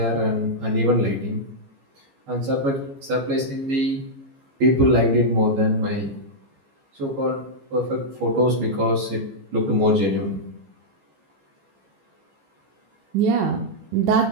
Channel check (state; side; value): late; left; 15 ms